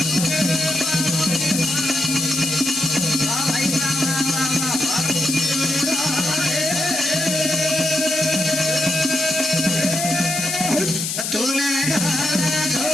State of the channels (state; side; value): noise; left; hiss, 2 dB below the sound